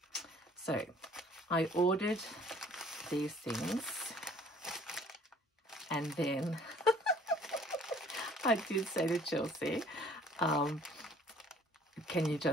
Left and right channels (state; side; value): normal; both; correlation 0.55